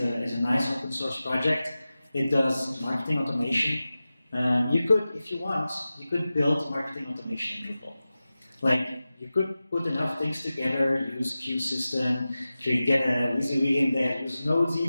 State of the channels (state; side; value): inverted; both; correlation -0.95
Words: nice open source project. It does marketing automation. You could, if you want, you could build marketing automation in Drupal. Like, you could put enough things together, use queue system, you could get a WYSIWYG in there, use nodes